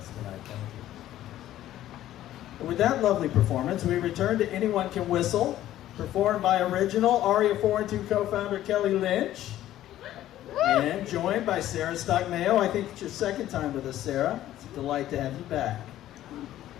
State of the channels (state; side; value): quieter; right; 13.3 dB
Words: tonight. Thank you. And with that lovely performance, we return to Anyone Can Whistle, performed by original Aria 4 and 2 co-founder Kelly Lynch, and joined by Sara Stock Mayo. I think it's your second time with us, Sara. It's a delight to have you back.